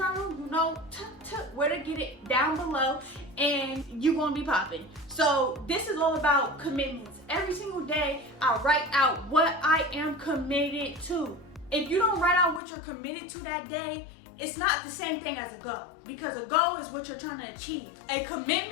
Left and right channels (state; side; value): drops out; right; at 12.6 s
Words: you know where to get it down below, and you're gonna be popping. So this is all about commitments. Every single day I write out what I am committed to. If you don't write out what you're committed to that day, it's not the same thing as a goal, because a goal is what you're trying to achieve. A